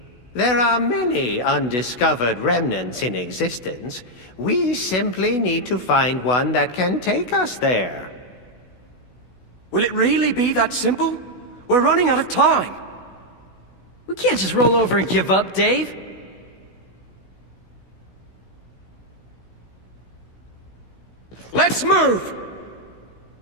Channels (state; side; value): late; right; 16 ms